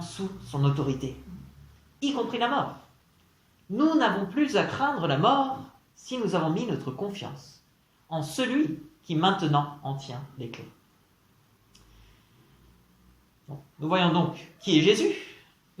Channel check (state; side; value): identical; both; correlation 1.00